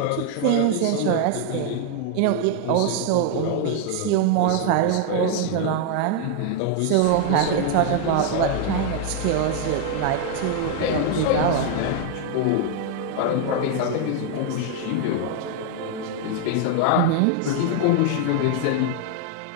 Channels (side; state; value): both; different; correlation 0.00